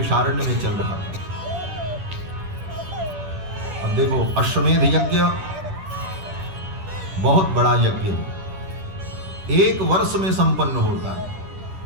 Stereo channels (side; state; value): left; late; 10 ms